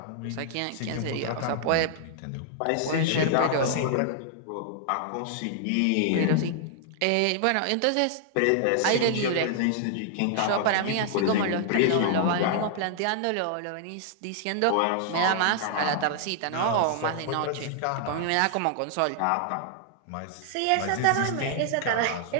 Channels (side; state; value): both; different; correlation -0.01